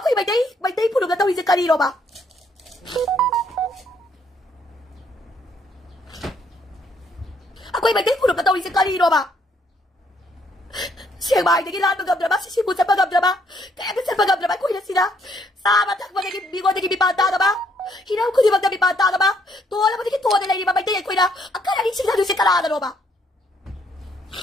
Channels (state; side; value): normal; both; correlation 0.69